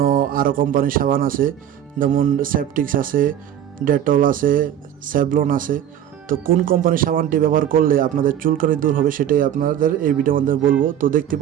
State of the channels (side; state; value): left; quieter; 10.5 dB